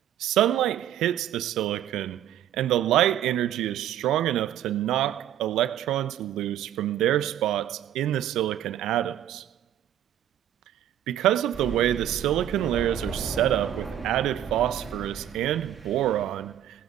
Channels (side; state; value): left; quieter; 11.4 dB